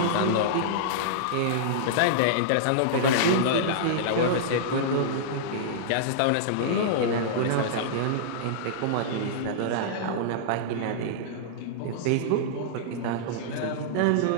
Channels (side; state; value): both; different; correlation -0.02